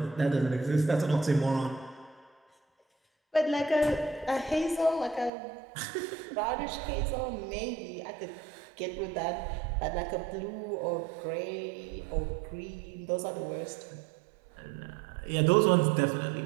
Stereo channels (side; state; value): left; drops out; at 5.3 s